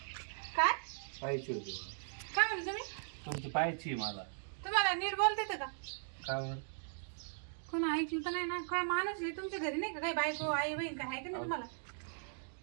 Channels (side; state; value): left; silent; digital silence